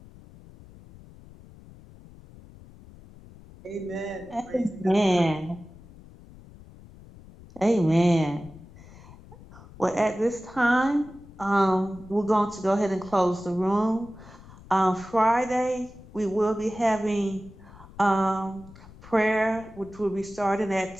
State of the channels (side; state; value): left; noise; rumble, 20 dB below the sound